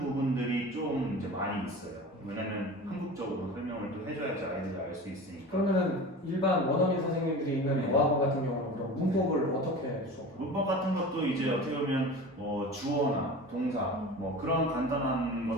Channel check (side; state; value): both; normal; correlation 0.34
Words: 부분들이 좀 이제 많이 있어요. 왜냐면 한국적으로 설명을 또 해줘야지 아이들이 알 수 있으니까. 그러면은 일반 원어민 선생님들이 있는 어학원 같은 경우는 그럼 문법을 어떻게 수업? 문법 같은 것도 이제 어떻게 보면 주어나 동사 뭐 그런 간단한